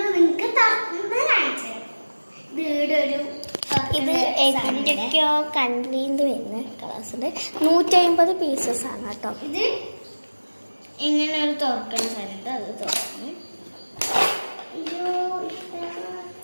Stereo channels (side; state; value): both; inverted; correlation -1.00